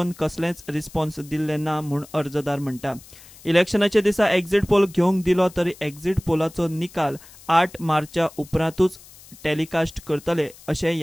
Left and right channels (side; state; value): left; noise; hiss, 21 dB below the sound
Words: कसलेंच रिस्पॉन्स दिल्लें ना म्हूण अर्जदार म्हणटा. इलेक्शनाच्या दिसा एक्झिट पोल घेवंक दिलो तरी एक्झिट पोलाचो निकाल 8 मार्चा उपरांतूच टेलिकास्ट करतले अशें